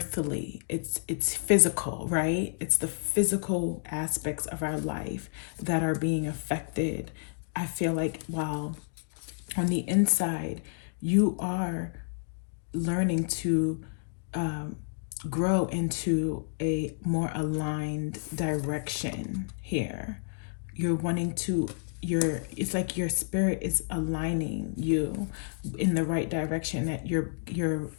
It's physical, right? It's the physical aspects of our life that are being affected. I feel like while on the inside, you are learning to grow into a more aligned direction here. You're wanting to, it's like your spirit is aligning you in the right direction, that your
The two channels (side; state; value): right; silent; digital silence